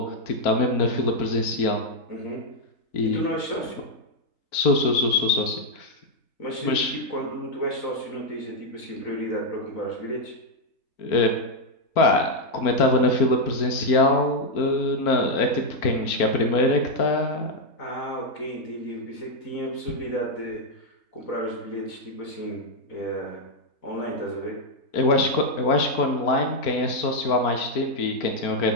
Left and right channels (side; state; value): right; late; 4.4 ms